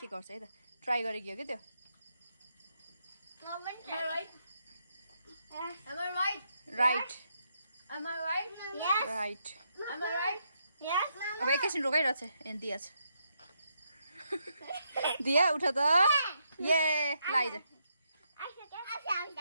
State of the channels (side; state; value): both; inverted; correlation -0.79